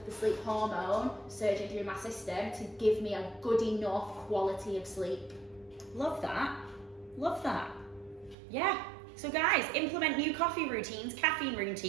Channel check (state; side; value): drops out; left; at 8.3 s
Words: the sleep hormone surging through my system to give me a good enough quality of sleep. Love that. Love that. Yeah. So guys, implement new coffee routines, caffeine